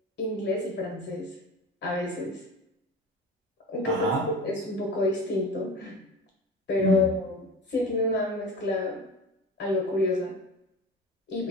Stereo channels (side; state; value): both; normal; correlation 0.32